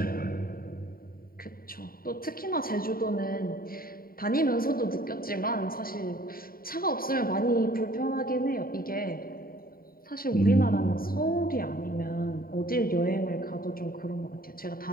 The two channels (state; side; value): late; right; 0.43 ms